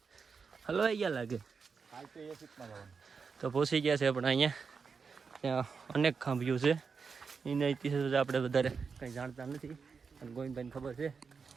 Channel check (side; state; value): left; quieter; 5.4 dB